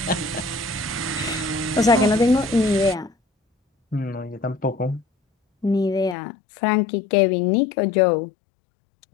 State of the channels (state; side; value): drops out; right; at 6.2 s